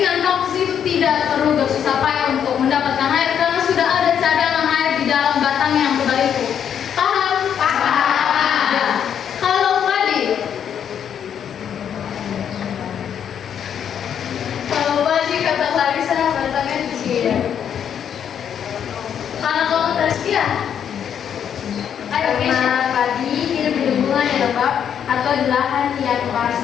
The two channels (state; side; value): quieter; right; 8.6 dB